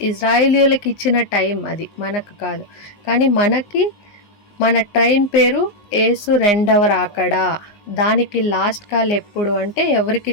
ఇజ్రాయేలీయులకు ఇచ్చిన టైం, అది మనకు కాదు. కానీ మన ట్రైన్ పేరు యేసు రెండవ రాకడ. దానికి లాస్ట్ కాల్ ఎప్పుడు అంటే ఎవరికి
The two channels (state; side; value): late; right; 19 ms